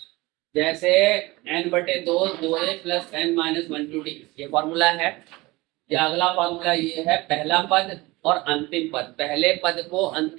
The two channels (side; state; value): left; quieter; 21.6 dB